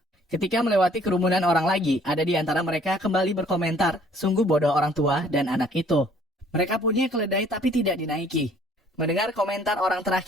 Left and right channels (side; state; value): both; normal; correlation 0.58